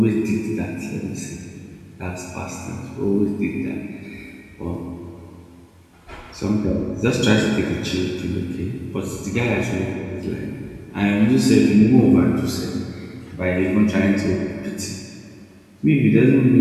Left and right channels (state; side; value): identical; both; correlation 1.00